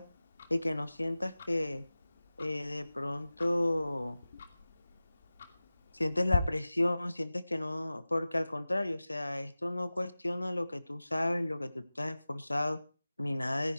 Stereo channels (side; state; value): both; inverted; correlation -0.97